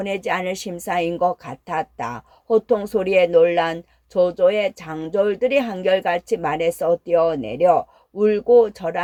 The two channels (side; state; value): both; identical; correlation 1.00